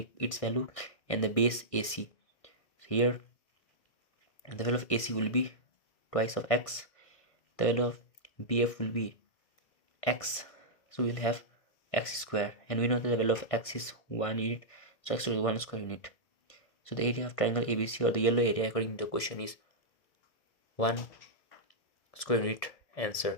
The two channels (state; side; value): late; right; 1.6 ms